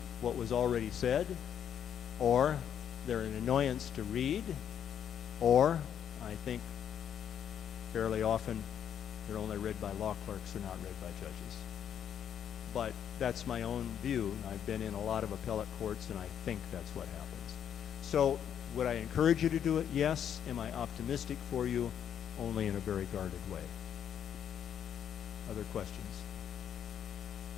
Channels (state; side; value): quieter; right; 9.0 dB